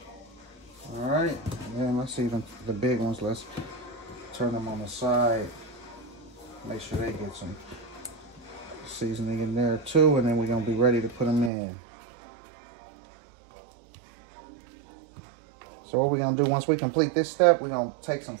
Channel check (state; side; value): drops out; left; at 11.5 s